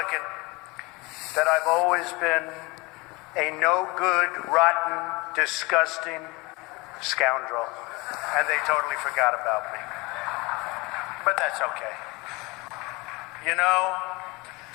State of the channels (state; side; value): quieter; right; 24.7 dB